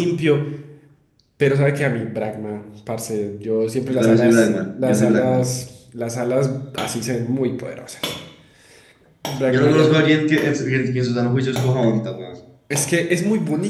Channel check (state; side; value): identical; both; correlation 1.00